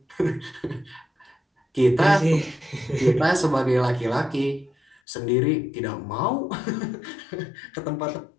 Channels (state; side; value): drops out; right; at 5.0 s